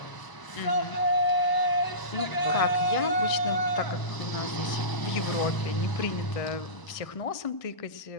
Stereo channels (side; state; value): right; late; 1.0 ms